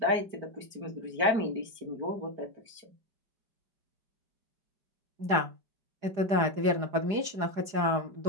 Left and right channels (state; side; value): late; left; 4.9 ms